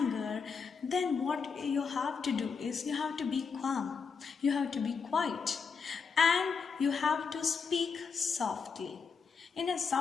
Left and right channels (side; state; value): right; quieter; 5.6 dB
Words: then what you have to do is you have to be calm. You have to be quiet. And you have to speak softly, in a